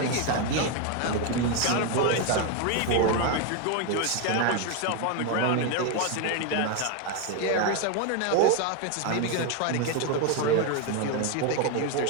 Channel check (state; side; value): different; both; correlation 0.01